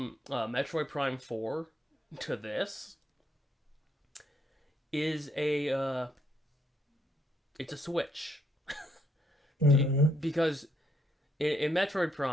Metroid Prime 4 to this is a it's a switch. Hmm. Because in Metroid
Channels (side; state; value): both; normal; correlation 0.73